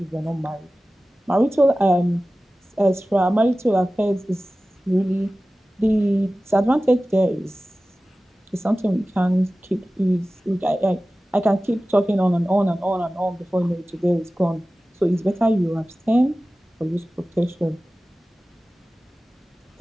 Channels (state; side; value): normal; both; correlation 0.96